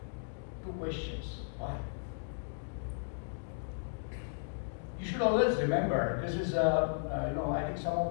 Two questions. Why? You should always remember, this is, I think some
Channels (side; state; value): right; silent; digital silence